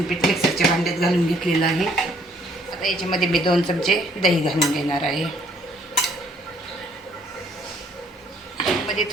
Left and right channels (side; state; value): both; normal; correlation 0.64